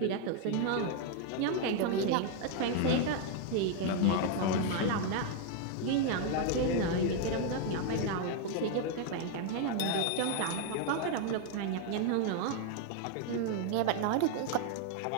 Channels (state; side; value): different; both; correlation 0.00